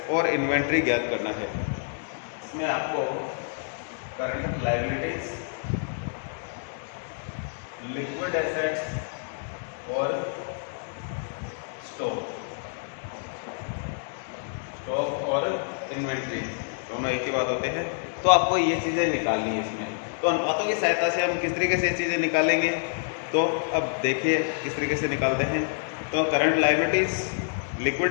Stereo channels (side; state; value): right; silent; digital silence